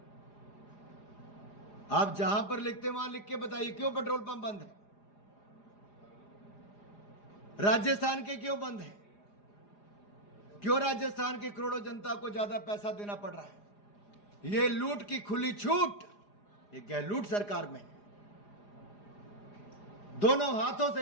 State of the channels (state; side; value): late; right; 4.9 ms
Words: आप जहां पर लिखते हैं वहां लिख के बताइए क्यों पेट्रोल पंप बंद है? राजस्थान के क्यों बंद है? क्यों राजस्थान के करोड़ों जनता को ज्यादा पैसा देना पड़ रहा है? ये लूट की खुली छूट ये गहलोत सरकार में है। दोनों हाथों